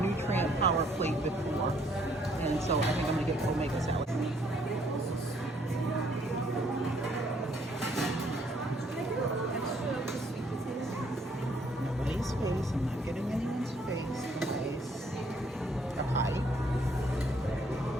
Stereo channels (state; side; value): normal; both; correlation 0.66